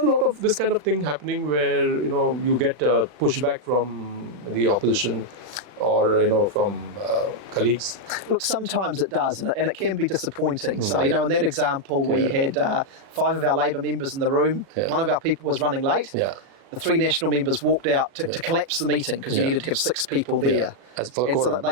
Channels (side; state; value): left; late; 38 ms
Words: a lot of this kind of thing happening where, you get pushback from the opposition or, from colleagues? Look, sometimes it does, and it can be disappointing. So, in that example, we had 5 of our Labour members in the room. One of our people was running late. The 3 national members walked out to collapse the meeting because you needed to have 6 people there. And so